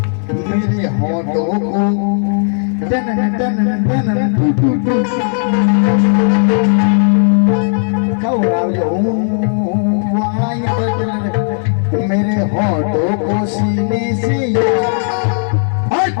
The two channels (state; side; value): silent; right; digital silence